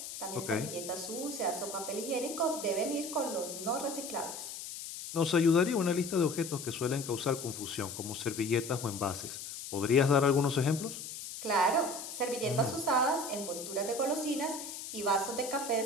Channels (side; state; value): left; noise; hiss, 9 dB below the sound